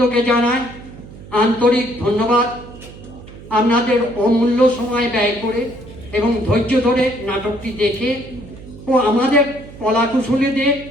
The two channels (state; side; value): noise; right; hum, 17 dB below the sound